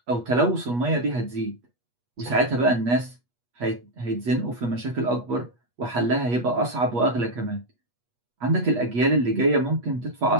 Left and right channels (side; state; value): left; late; 8.3 ms